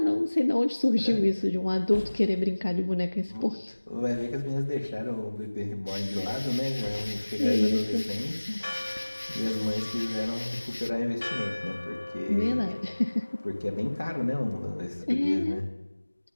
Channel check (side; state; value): both; inverted; correlation -1.00